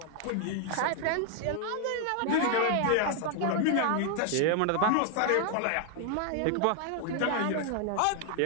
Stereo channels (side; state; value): both; different; correlation 0.00